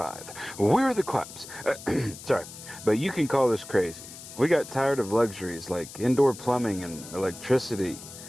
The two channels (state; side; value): noise; left; hiss, 14 dB below the sound